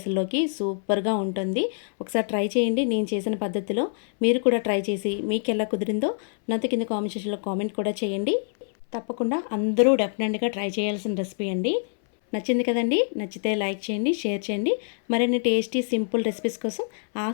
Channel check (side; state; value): right; silent; 60 dB below the other